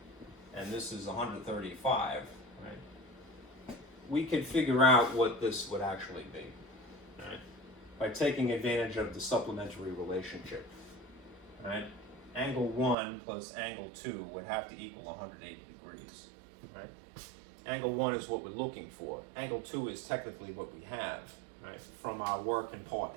and this is 135, right? we could figure out what this would actually be, right? By taking advantage of the supplementary relationship, right? Angle 1 plus angle 2 would have to equal 180 degrees, right? Angle 1 is what we're looking for. Angle 2 is technically what we have, right, from our work in part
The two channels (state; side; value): drops out; left; at 13.0 s